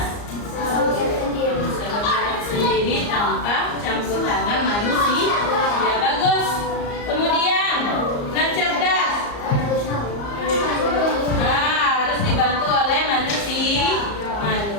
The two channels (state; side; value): late; right; 34 ms